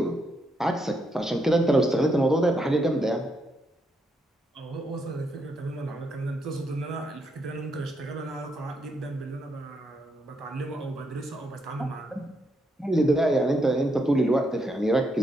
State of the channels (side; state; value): both; normal; correlation 0.78